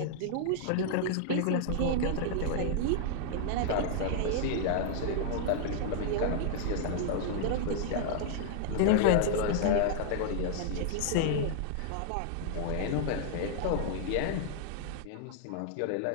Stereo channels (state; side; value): different; both; correlation -0.01